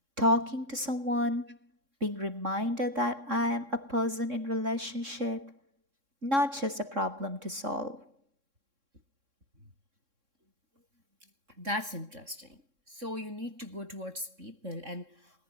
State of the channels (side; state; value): left; late; 3.6 ms